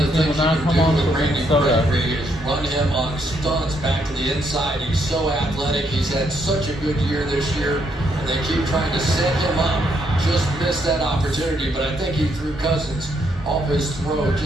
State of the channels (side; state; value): both; normal; correlation 0.74